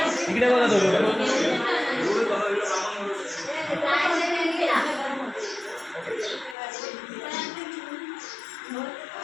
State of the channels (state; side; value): drops out; right; at 6.6 s